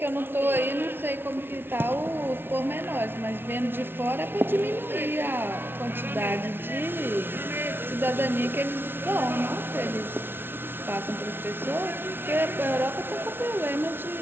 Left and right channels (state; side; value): late; left; 0.11 ms